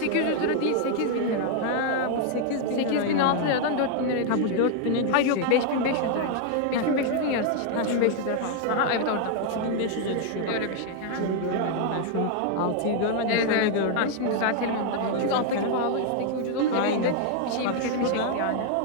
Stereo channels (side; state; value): both; different; correlation 0.00